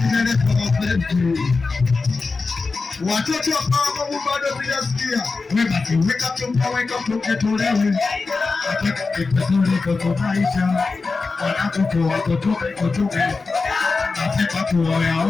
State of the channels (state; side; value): quieter; right; 4.1 dB